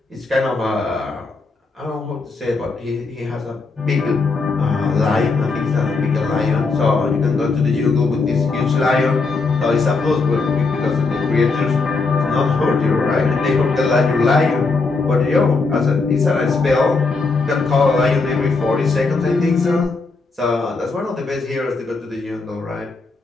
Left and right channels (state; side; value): quieter; right; 4.0 dB